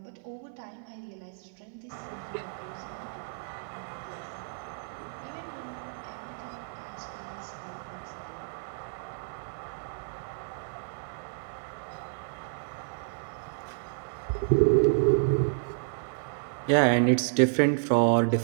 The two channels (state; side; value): silent; left; 57 dB below the other